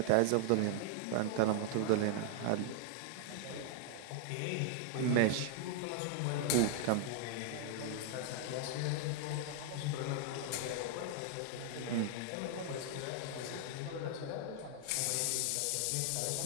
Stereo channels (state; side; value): different; both; correlation 0.00